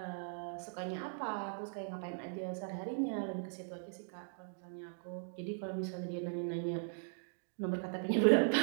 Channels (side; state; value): left; silent; digital silence